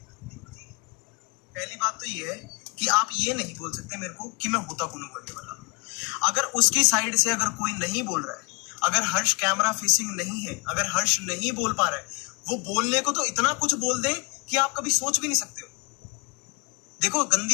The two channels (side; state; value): right; quieter; 30.5 dB